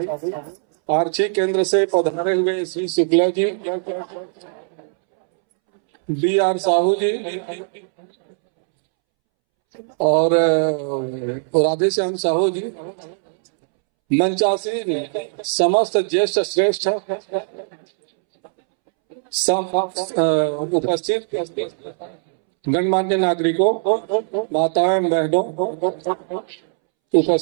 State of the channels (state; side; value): silent; left; 66 dB below the other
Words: आर्ची केंद्र से पधारे हुए श्री शुक्ला जी, BR साहू जी और राधेश्याम साहू जी, मंचासीन समस्त ज्येष्ठ श्रेष्ठ उपस्थित गणमान्य नागरिकों, माताएं बहनों,